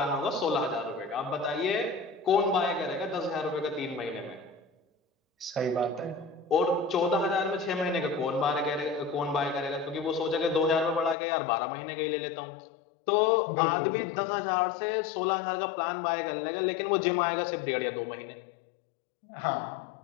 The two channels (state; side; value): drops out; right; at 11.2 s